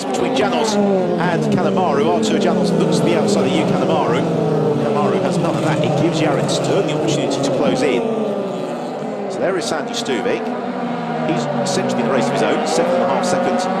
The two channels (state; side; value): identical; both; correlation 1.00